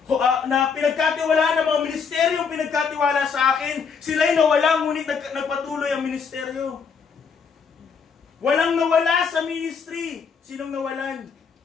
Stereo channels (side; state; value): right; quieter; 6.0 dB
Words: na pinagkatiwalaan ng mga ministeryong pinagkatiwala sa akin. Sila'y nawala, ngunit nagpatuloy ang ministeryo. Walang nawala sa ministry. Sinong nawalan?